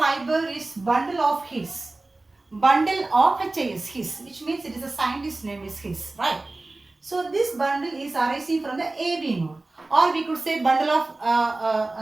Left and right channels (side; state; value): left; quieter; 3.1 dB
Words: is bundle of His. Bundle of HIS, His, which means it is a scientist name is His, right? So this bundle is arising from the AV node, or we could say bundle of